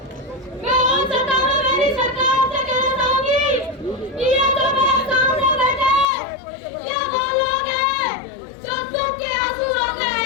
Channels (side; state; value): right; drops out; at 6.1 s